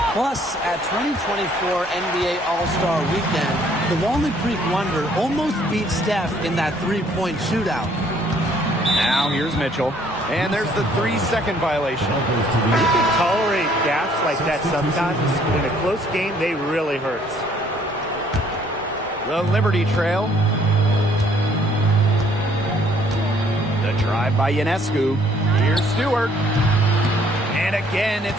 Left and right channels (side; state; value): both; normal; correlation 0.62